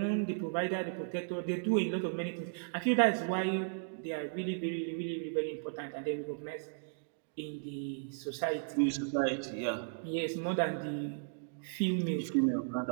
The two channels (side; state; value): left; silent; digital silence